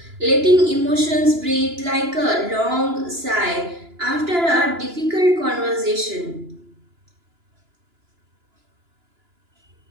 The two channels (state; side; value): late; left; 2.9 ms